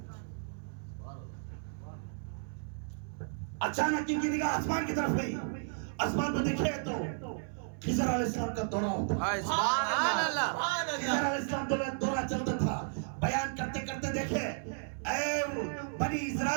اچانک ان کی نگاہ آسمان کی طرف ہوئی. آسمان کو دیکھے تو خضر علیہ السلام کا دورہ ہوتا. سبحان اللہ. خضر علیہ السلام دورہ چلتا تھا. بیان کرتے کرتے دیکھے, اے بنی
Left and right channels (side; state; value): left; silent; 55 dB below the other